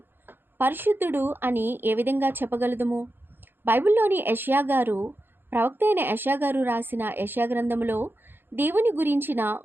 పరిశుద్ధుడు అని ఏ విధంగా చెప్పగలదుము? బైబిల్లోని యెషయా గారు, ప్రవక్త అయిన యెషయా గారు రాసిన యెషయా గ్రంథములో దేవుని గురించిన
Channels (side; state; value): left; late; 0.10 ms